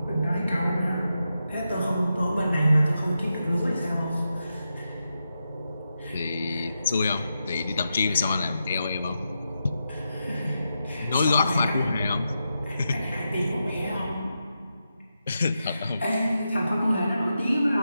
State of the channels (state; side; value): inverted; both; correlation -0.87